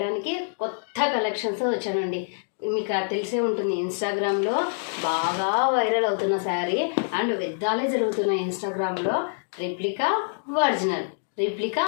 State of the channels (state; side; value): silent; right; digital silence